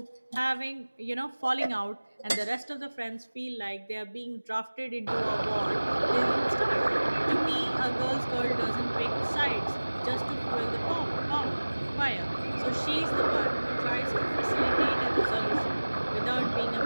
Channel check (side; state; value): both; inverted; correlation -1.00